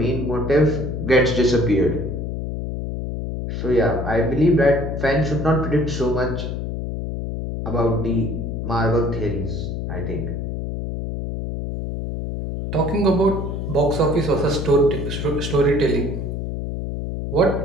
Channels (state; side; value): noise; left; hum, 4 dB below the sound